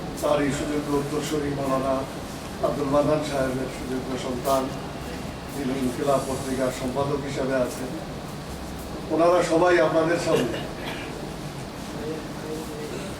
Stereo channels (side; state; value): both; identical; correlation 1.00